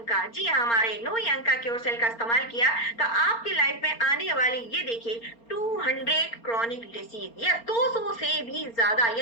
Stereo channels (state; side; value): late; right; 4.3 ms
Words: का, जी हाँ, हमारे 9 अंक का क्योर सेल का इस्तेमाल किया, तो आपकी लाइफ में आने वाली, ये देखिए, 200 क्रॉनिक डिसीज, या 200 से भी ज्यादा,